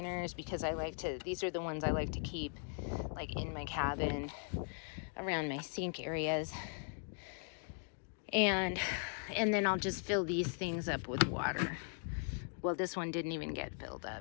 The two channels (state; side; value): silent; right; 52 dB below the other